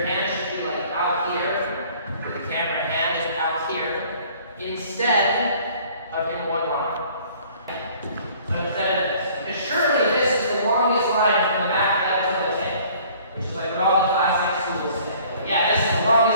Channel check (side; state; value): both; inverted; correlation -0.54